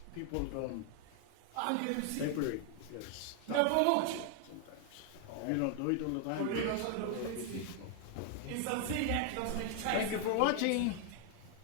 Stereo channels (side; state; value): both; different; correlation 0.00